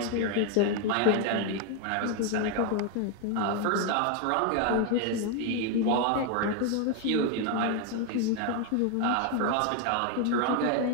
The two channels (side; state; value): both; different; correlation 0.01